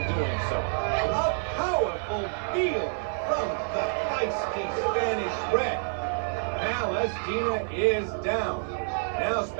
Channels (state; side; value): silent; left; 59 dB below the other